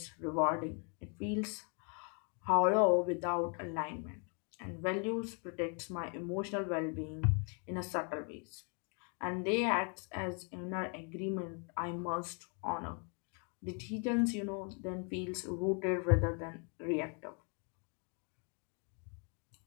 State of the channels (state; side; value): quieter; right; 38.5 dB